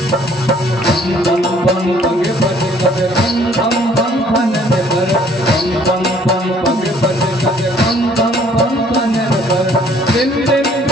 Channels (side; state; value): both; normal; correlation 0.59